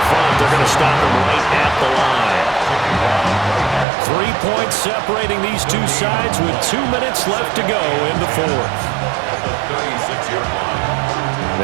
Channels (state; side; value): drops out; left; at 3.9 s